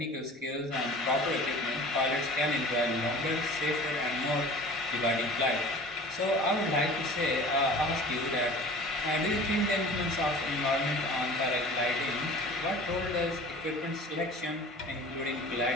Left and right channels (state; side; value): normal; both; correlation 0.42